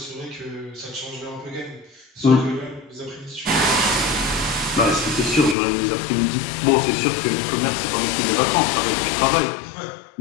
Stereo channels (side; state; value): right; drops out; at 5.6 s